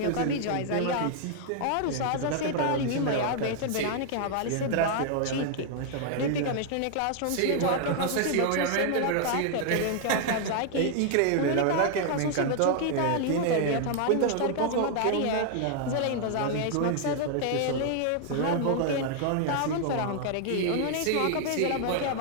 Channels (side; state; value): both; different; correlation 0.00